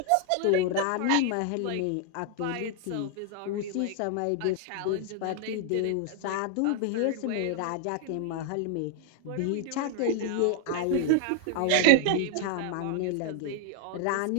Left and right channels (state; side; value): different; both; correlation -0.01